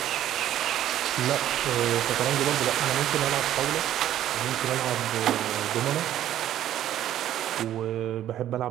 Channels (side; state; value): left; quieter; 12.0 dB